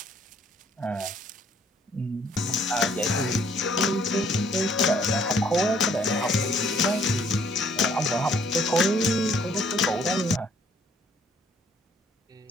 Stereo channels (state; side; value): normal; both; correlation 0.63